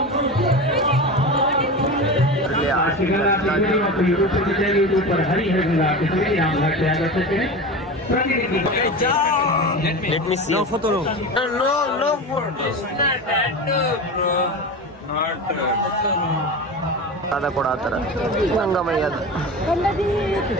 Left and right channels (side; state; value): both; normal; correlation 0.27